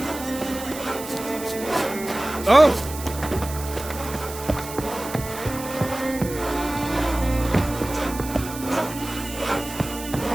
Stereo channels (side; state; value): right; noise; hiss, 12 dB below the sound